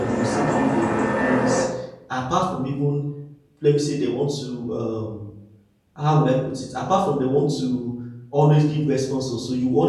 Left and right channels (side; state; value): both; identical; correlation 1.00